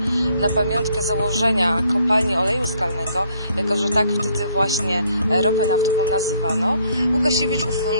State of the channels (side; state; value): both; inverted; correlation -0.66